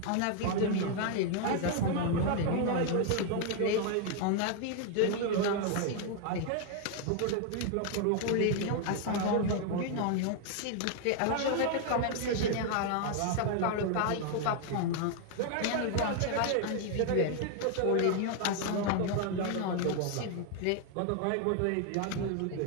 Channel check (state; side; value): different; both; correlation 0.00